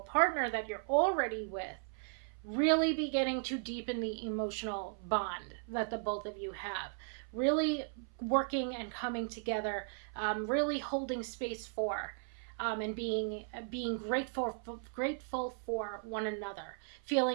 that you're already with really beginning to deepen the emotional bond that the both of you have. Really working and coming together, really holding space for and being grateful for one another,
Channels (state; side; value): silent; left; 53 dB below the other